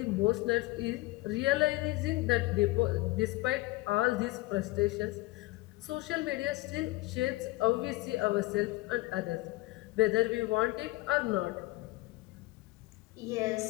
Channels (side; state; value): right; quieter; 20.6 dB